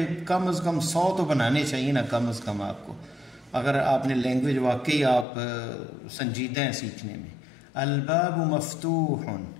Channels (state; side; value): drops out; right; at 5.2 s